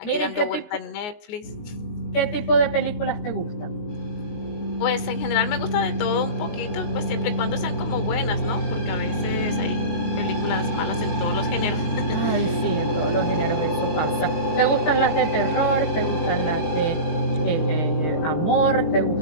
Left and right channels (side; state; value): right; late; 19 ms